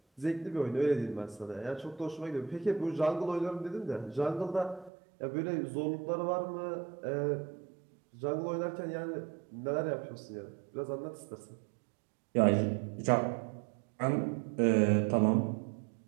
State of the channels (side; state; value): left; drops out; at 4.9 s